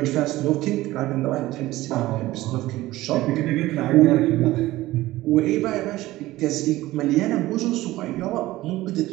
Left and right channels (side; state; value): left; quieter; 17.1 dB